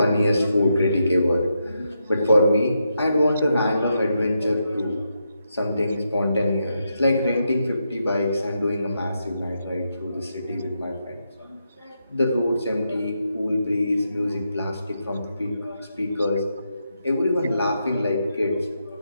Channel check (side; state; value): both; inverted; correlation -0.83